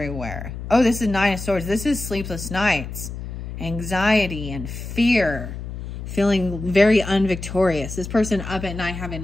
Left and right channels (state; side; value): noise; left; hum, 8 dB below the sound